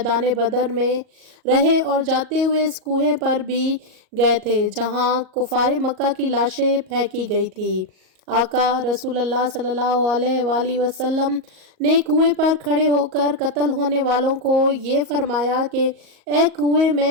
بدر میں رہے اور جاتے ہوئے اس کنویں پر بھی گئے تھے جہاں کفار مکہ کی لاشیں پھینکی گئی تھی۔ آقا رسول اللہ صلی اللہ علیہ وآلہ وسلم نے کنویں پر کھڑے ہو کر قتل ہونے والوں کو یہ فرمایا کہ اے کنویں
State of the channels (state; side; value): late; left; 38 ms